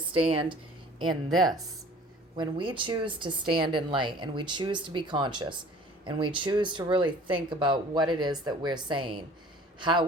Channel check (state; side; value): normal; both; correlation 0.48